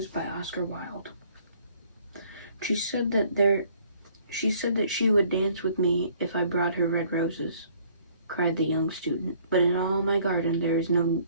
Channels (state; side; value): inverted; both; correlation -0.60